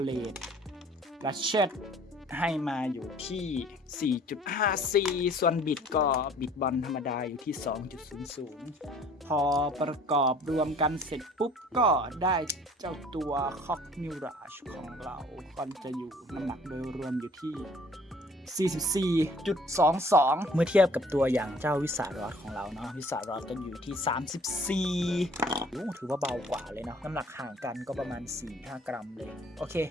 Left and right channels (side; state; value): both; normal; correlation 0.53